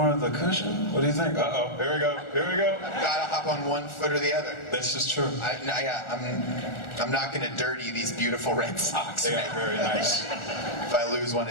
of the cushion? What do you think? Uh-oh, here we go. Gotta hop on one foot or the other. This is true. I'm not gonna dirty these beautiful red socks. They are very nice. If I lose one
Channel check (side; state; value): right; late; 1.4 ms